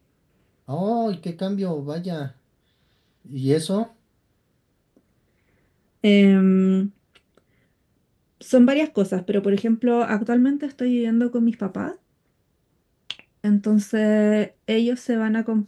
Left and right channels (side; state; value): both; identical; correlation 1.00